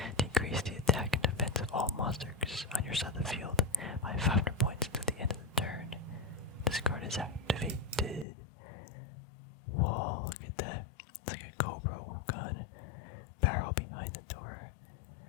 Decrease the attack and defense of all monsters on your side of the field by 500 points until the end of the turn. This card is activated. Whoa, look at that. It's like a COBRA gun. Barrel behind the door.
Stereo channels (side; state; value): right; drops out; at 8.2 s